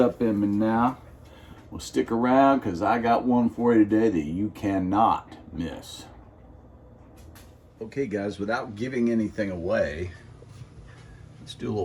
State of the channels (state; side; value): identical; both; correlation 1.00